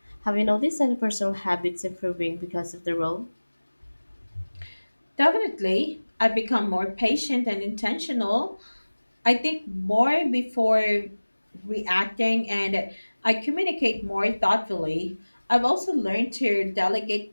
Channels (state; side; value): inverted; both; correlation -1.00